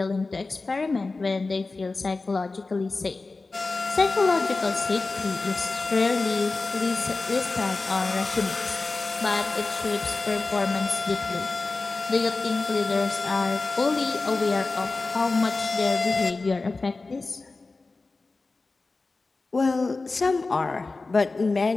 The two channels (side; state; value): right; quieter; 3.6 dB